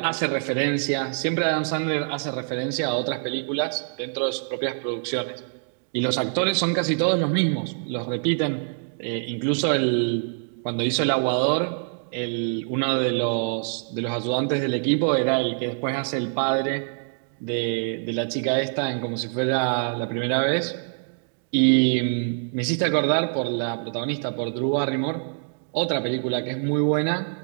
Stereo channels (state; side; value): silent; left; digital silence